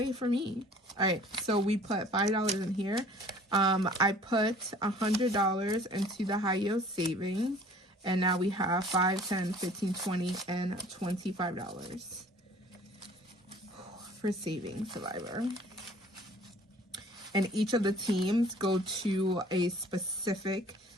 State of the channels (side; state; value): both; normal; correlation 0.51